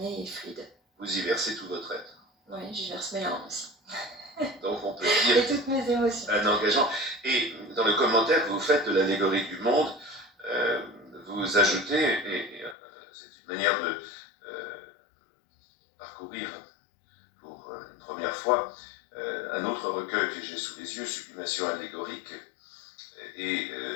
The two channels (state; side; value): drops out; right; at 12.8 s